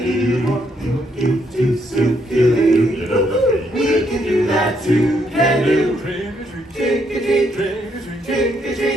want to circulate? We can do that too. Can do trick or treat, trick or treat, trick or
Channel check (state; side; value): normal; both; correlation 0.74